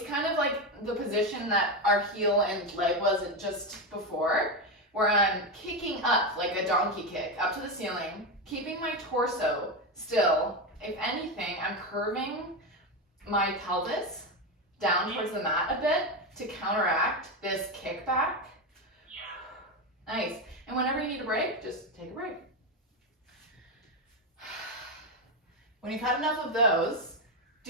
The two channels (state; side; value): normal; both; correlation 0.12